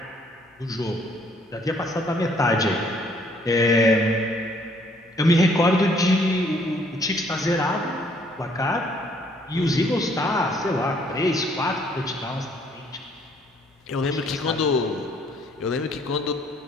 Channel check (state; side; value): normal; both; correlation 0.63